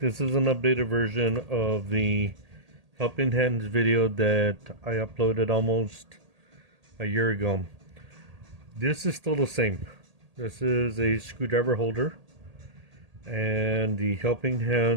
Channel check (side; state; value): left; late; 1.8 ms